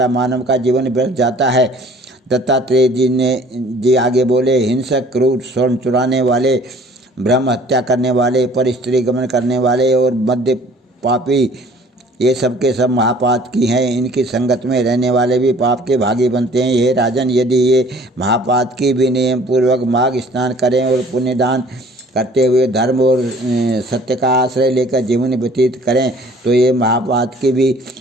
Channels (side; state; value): both; normal; correlation 0.53